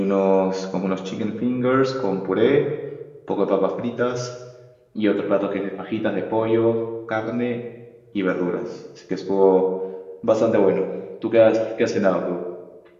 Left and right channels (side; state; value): both; identical; correlation 1.00